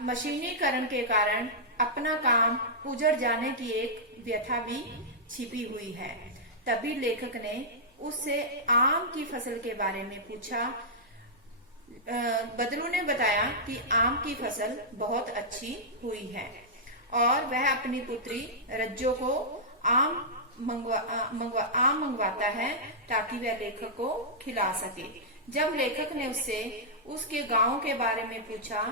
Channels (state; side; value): normal; both; correlation -0.12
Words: मशीनीकरण के कारण अपना काम उजड़ जाने की एक व्यथा भी छिपी हुई है। तभी लेखक ने उससे आम की फसल के बारे में पूछा। बदलू ने बताया कि आम की फसल बहुत अच्छी हुई है और वह अपनी पुत्री रज्जो को आम मंगवाता है ताकि वह लेखक को खिला सके। जब लेखक ने उससे उसके गांव के बारे में पूछा